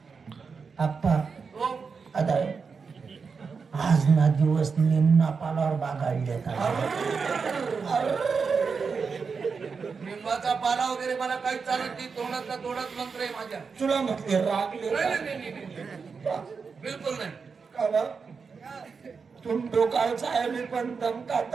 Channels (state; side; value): quieter; left; 5.3 dB